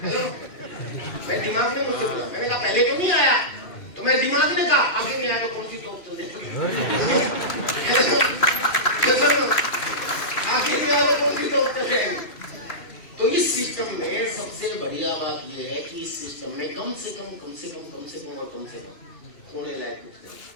मेरे दिमाग ने मुझसे बोला, मैंने कहा पहले तो नहीं आया। तो मेरे दिमाग ने कहा आगे नहीं आया तो कौन सी टॉप चल आखिर नहीं आया तो कौन सी टॉप चल जाएगी। तो इस सिस्टम में सबसे बढ़िया बात यह है कि इस सिस्टम में कम से कम खोने लायक कुछ नहीं,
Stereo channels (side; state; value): right; late; 2.6 ms